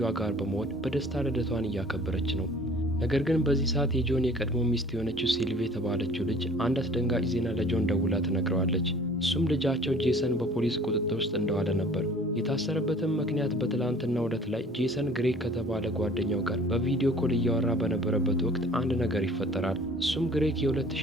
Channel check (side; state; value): both; normal; correlation 0.50